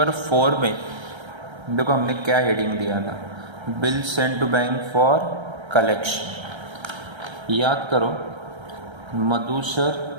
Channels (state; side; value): late; left; 1.3 ms